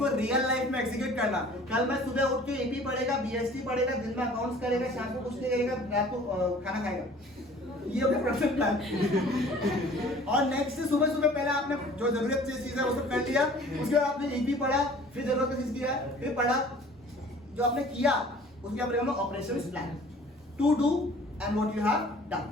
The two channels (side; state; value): both; normal; correlation 0.49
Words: रियल लाइफ में एग्जीक्यूट करना। कल मैं सुबह उठ के एपी पढ़ेगा, बीएसटी पढ़ेगा, दिन में अकाउंट्स करेगा, शाम को कुछ नहीं करेगा, रात को खाना खाएगा। ये हो गया प्रोडक्शन प्लान। और नेक्स्ट सुबह सुबह पहले आपने जो जरूरत चीज है वो सब कर लिया, उसके बाद आपने एपी पढ़ा, फिर जरूरत चीज किया, फिर पढ़ा, जो आपने किया उसके आप रहेगा operations plan, to do and what you have done.